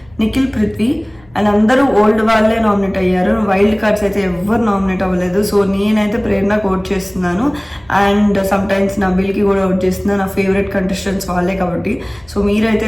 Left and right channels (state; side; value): noise; left; rumble, 29 dB below the sound